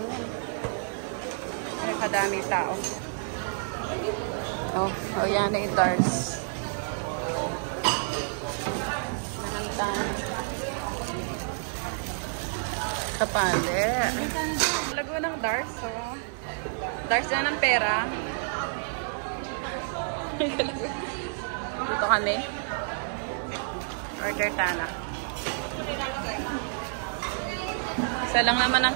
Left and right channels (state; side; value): silent; left; 59 dB below the other